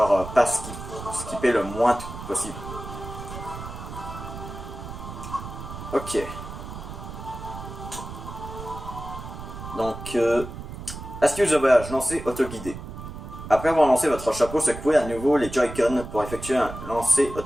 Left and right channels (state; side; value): noise; right; rumble, 10 dB below the sound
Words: pas skipper le moins de trucs possible. Ok. Donc, astuce de voyage, lancer autoguidé. Après avoir lancé votre chapeau, secouez à nouveau les Joy-Con pour effectuer un lancer